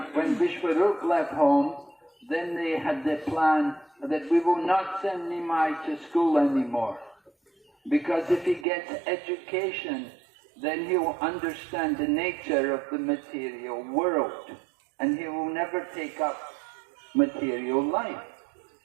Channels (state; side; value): drops out; left; at 8.7 s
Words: when Vishwarup left home, then they had the plan that we will not send Nimai to school anymore. Because if he gets education, then he will understand the nature of the material world, and he will never take up material life.